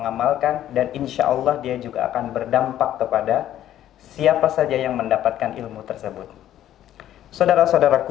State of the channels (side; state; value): right; quieter; 12.1 dB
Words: dan insya Allah dia juga akan berdampak kepada siapa saja yang mendapatkan ilmu tersebut.